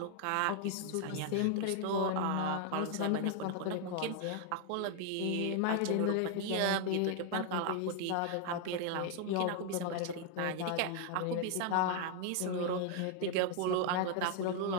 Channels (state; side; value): different; both; correlation 0.00